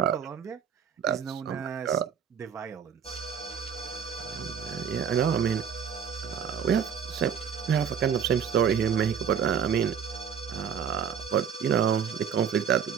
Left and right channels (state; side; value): quieter; left; 7.7 dB